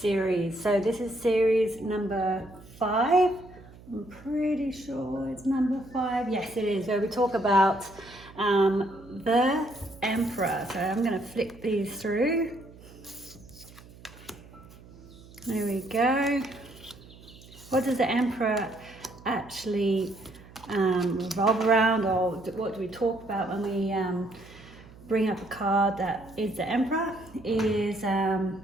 So this is series number 5. I'm pretty sure it's number 5. Yes it is, where we talk about the Emperor. So I'm going to flick these through. There we go. What does the Emperor actually revolve around, or what do we talk about when we bring up a card that is the Emperor? Is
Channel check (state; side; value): noise; right; hum, 21 dB below the sound